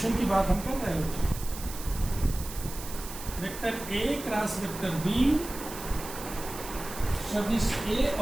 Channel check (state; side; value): noise; right; hiss, 12 dB below the sound